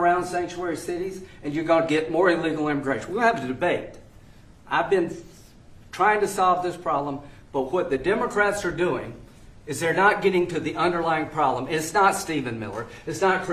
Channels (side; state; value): both; identical; correlation 1.00